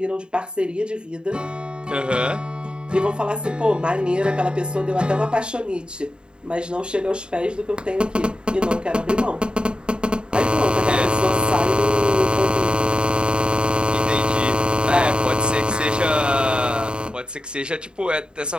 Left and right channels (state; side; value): late; left; 0.050 ms